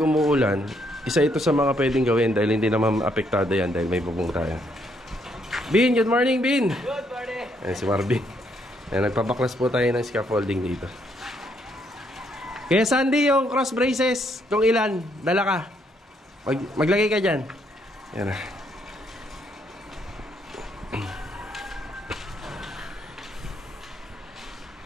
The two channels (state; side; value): normal; both; correlation 0.72